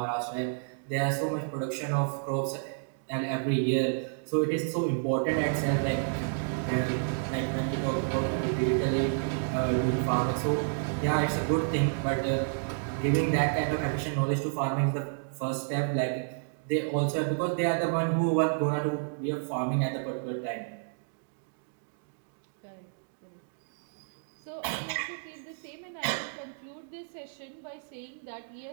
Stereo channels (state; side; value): silent; left; digital silence